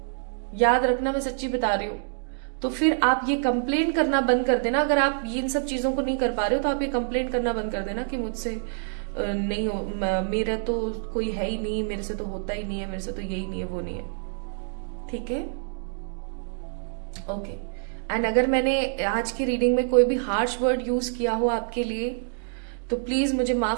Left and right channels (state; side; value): silent; left; digital silence